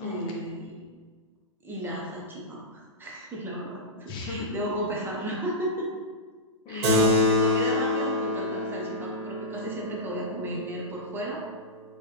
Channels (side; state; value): both; normal; correlation -0.12